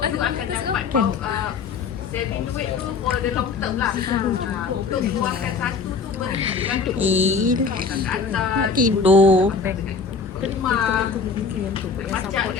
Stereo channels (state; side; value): quieter; right; 5.1 dB